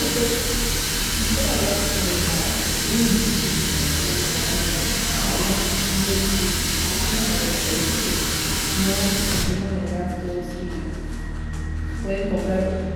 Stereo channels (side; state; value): both; identical; correlation 1.00